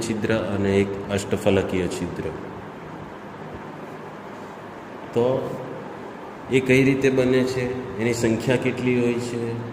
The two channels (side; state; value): both; identical; correlation 1.00